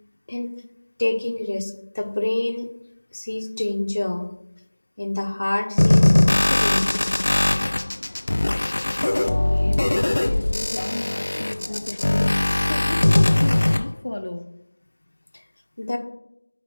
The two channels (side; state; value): both; inverted; correlation -1.00